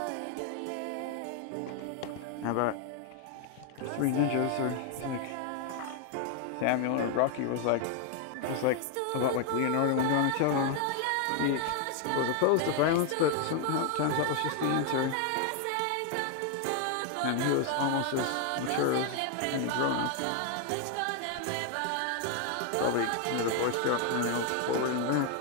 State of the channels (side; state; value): both; different; correlation 0.00